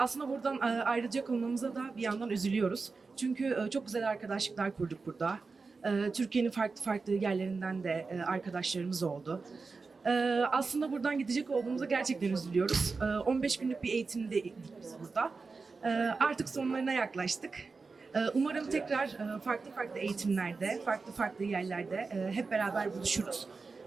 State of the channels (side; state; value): left; quieter; 4.3 dB